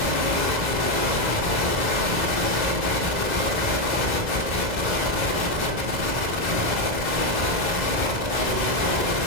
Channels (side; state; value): left; late; 2.0 ms